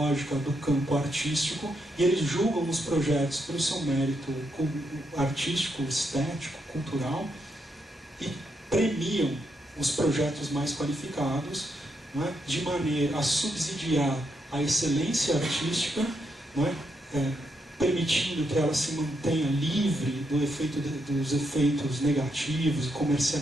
do campo artístico, e eles julgam os projetos pelo seu mérito artístico, estético, cultural, e premiam os projetos mais qualificados, não é? De maneira a subsidiar a excelência artística, não é? Permitindo que ela se mantenha livre dos efeitos negativos,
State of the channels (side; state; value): both; normal; correlation 0.80